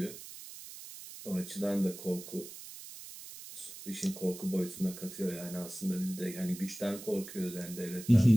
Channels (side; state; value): right; noise; hiss, 13 dB below the sound